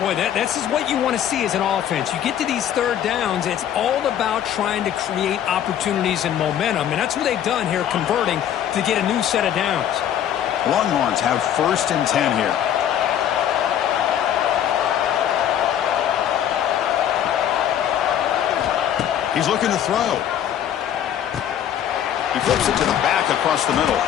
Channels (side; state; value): right; quieter; 10.2 dB